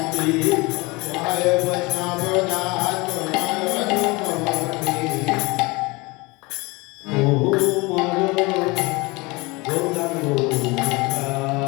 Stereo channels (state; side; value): quieter; right; 24.8 dB